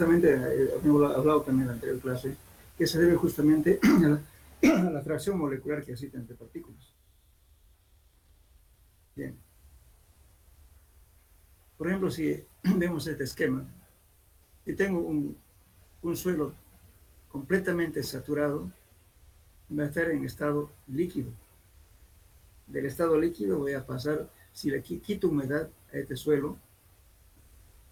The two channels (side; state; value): both; identical; correlation 1.00